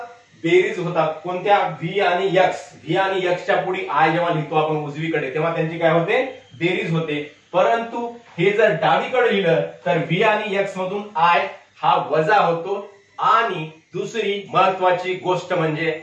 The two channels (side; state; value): both; identical; correlation 1.00